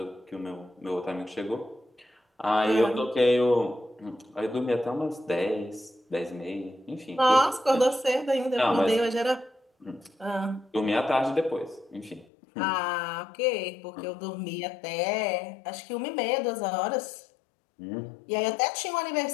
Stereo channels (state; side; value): drops out; right; at 12.2 s